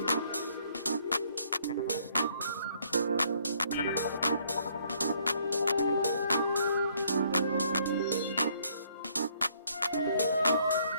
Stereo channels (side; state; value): both; inverted; correlation -0.66